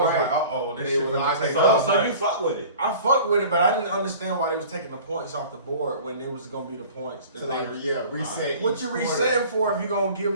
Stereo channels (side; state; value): both; inverted; correlation -0.44